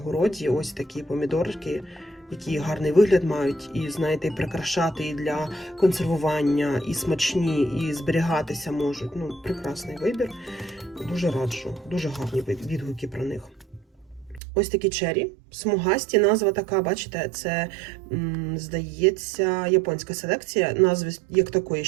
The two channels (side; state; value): left; drops out; at 14.4 s